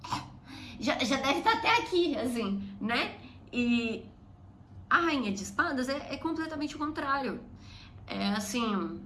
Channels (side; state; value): both; identical; correlation 1.00